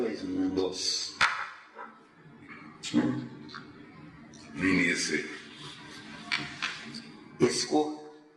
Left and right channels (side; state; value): both; identical; correlation 1.00